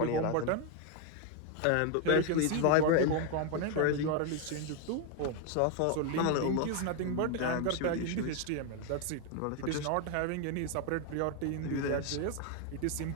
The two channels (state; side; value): different; both; correlation 0.01